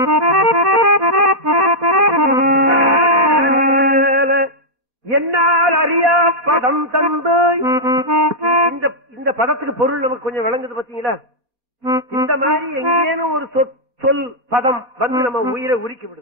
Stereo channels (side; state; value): left; late; 4.4 ms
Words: என்னால் அறியா பதம் தந்து. இந்த பதத்துக்கு பொருள் நமக்கு கொஞ்சம் விளங்குது பாத்தீங்களா? இந்த மாதிரி எங்கேனும் ஒரு சொல் பதம் வந்து நம்ம உயிரை உரிக்கி